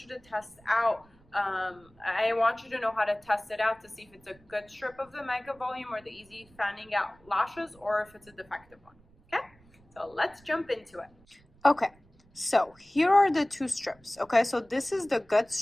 you to test out. I want you to know how to test it out to see if it's a good strip of the mega volume or the easy fanning out lashes, or if it's a defective one. Okay, so let's jump into it. Okay, so here are the two strips. Okay, so this is the good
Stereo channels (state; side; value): noise; right; rumble, 29 dB below the sound